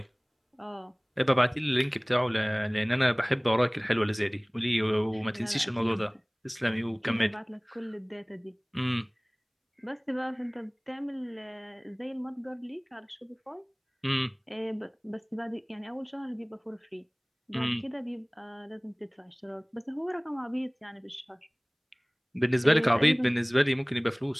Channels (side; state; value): both; identical; correlation 1.00